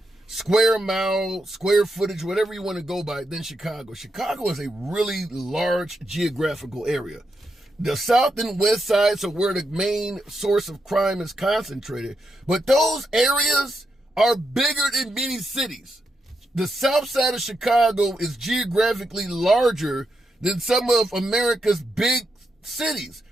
square mile, square footage, whatever you want to go by, than Chicago. Chicago is a really large geographical area. The south and west sides are where the main source of crime is concentrated. But those areas are bigger than many cities. The south side of Chicago is geographically larger than some of America's big cities.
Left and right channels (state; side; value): normal; both; correlation 0.83